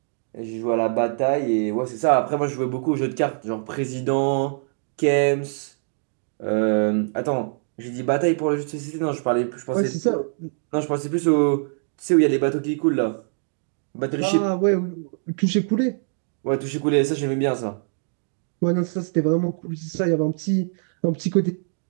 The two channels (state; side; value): silent; left; 63 dB below the other